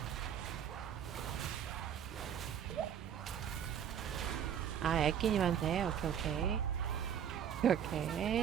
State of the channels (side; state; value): left; quieter; 8.8 dB